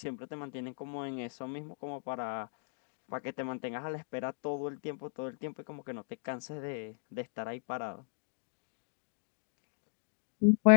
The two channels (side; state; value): right; silent; digital silence